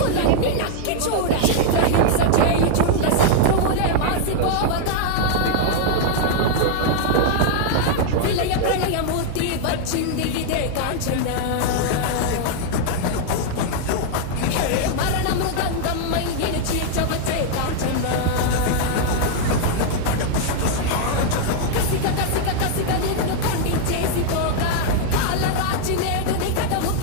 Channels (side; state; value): both; different; correlation 0.00